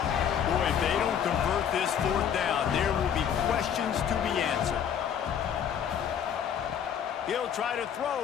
if they don't convert this fourth down, there will be questions to be answered. He'll try to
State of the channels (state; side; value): quieter; right; 8.5 dB